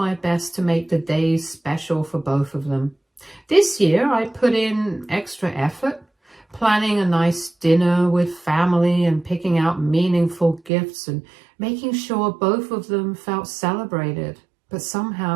best to make the days special for both of them. This year, I put in extra effort, planning a nice dinner with family and picking out meaningful gifts and making sure both of them felt celebrated. But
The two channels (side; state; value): left; drops out; at 10.7 s